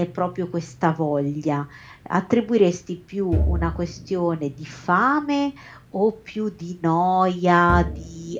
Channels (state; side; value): identical; both; correlation 1.00